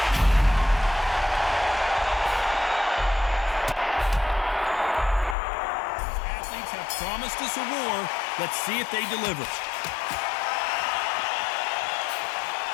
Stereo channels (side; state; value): right; drops out; at 5.4 s